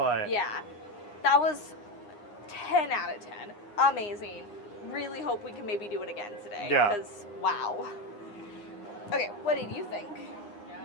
yeah, that was 10 out of 10. Amazing. Really hope we can maybe do it again today. Yeah. Because, wow. Okay, what did you think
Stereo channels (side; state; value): right; late; 9.7 ms